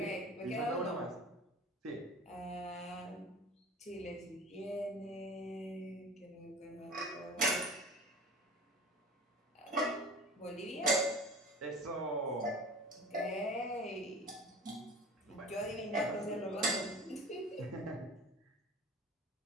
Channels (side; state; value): both; normal; correlation 0.39